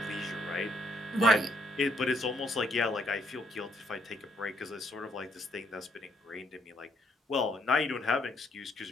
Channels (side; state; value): both; normal; correlation 0.70